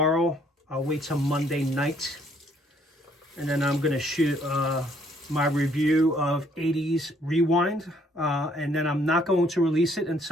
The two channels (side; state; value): both; normal; correlation 0.65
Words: I'll wait till Monday night. And then I'm going to shoot my review of 80s Rewind. And then I'm not going to release it